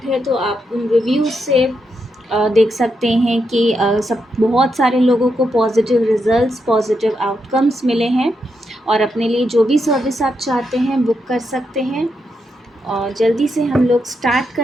है तो आप उन रिव्यूज़ से देख सकते हैं कि सब बहुत सारे लोगों को पॉजिटिव रिजल्ट्स, पॉजिटिव आउटकम्स मिले हैं और अपने लिए जो भी सर्विस आप चाहते हैं बुक कर सकते हैं। और जल्दी से हम लोग स्टार्ट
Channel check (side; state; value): both; normal; correlation 0.83